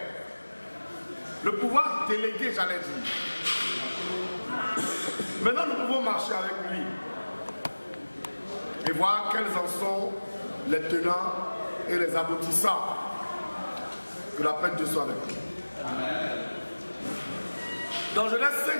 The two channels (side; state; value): both; inverted; correlation -1.00